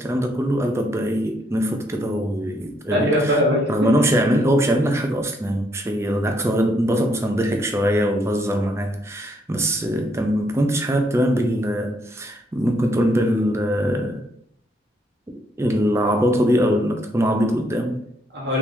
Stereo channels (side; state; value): both; normal; correlation 0.72